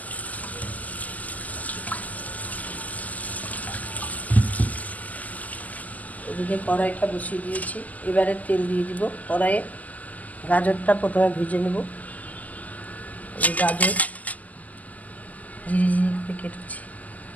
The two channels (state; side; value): late; right; 0.078 ms